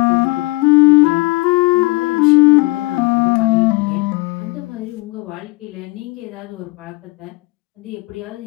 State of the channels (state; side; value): quieter; right; 24.1 dB